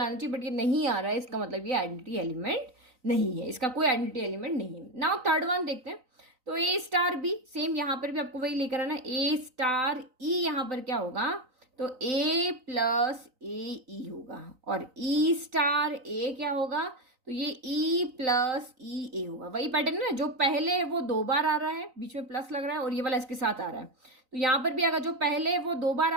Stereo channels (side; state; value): left; late; 3.9 ms